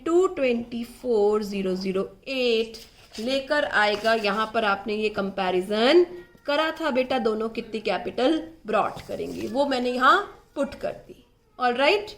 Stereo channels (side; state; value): both; identical; correlation 1.00